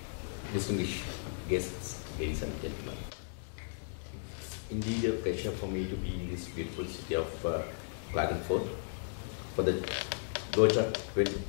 distinguished guests, ladies and gentlemen. It's indeed a pleasure for me to be in this beautiful city of Klagenfurt for the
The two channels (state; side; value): silent; right; digital silence